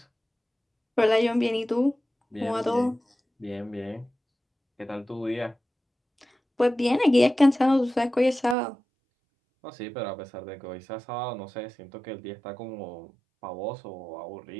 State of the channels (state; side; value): drops out; left; at 8.6 s